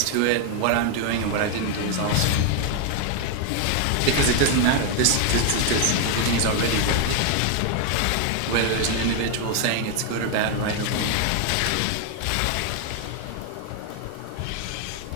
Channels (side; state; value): both; different; correlation 0.00